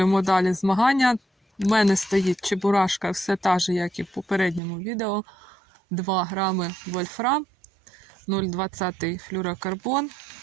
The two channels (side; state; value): left; drops out; at 4.6 s